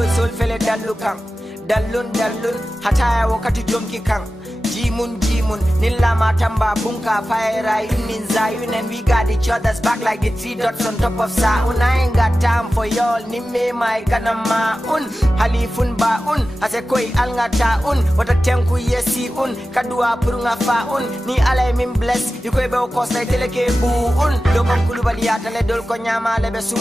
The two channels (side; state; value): both; normal; correlation 0.94